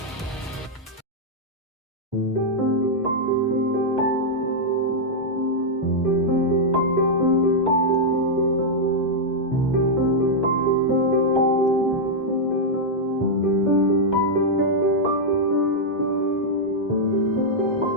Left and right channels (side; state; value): both; normal; correlation -0.05